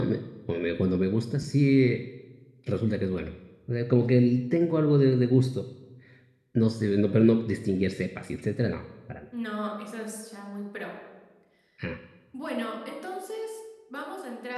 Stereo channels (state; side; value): identical; both; correlation 1.00